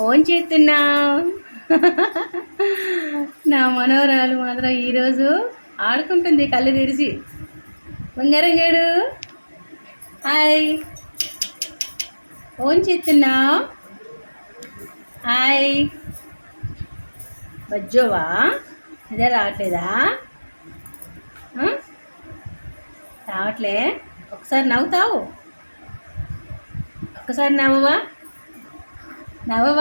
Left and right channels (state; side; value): inverted; both; correlation -1.00